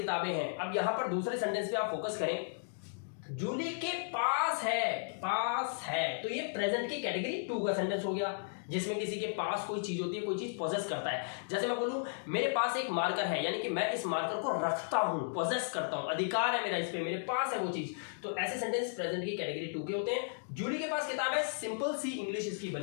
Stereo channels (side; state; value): right; silent; digital silence